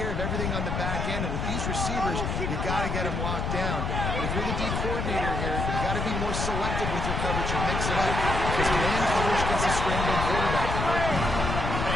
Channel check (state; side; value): noise; left; rumble, 1 dB below the sound